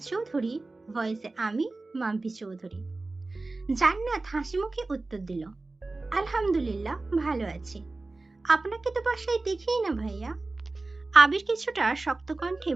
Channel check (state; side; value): quieter; left; 3.3 dB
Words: চৌধুরী, ভয়েসে আমি মাম্পি চৌধুরী। জান্নাত হাসি মুখে উত্তর দিল, আলহামদুলিল্লাহ ভালো আছি। আপনাকে তো বাসায় দেখিই না ভাইয়া। আবির কিছুটা শক্ত কণ্ঠে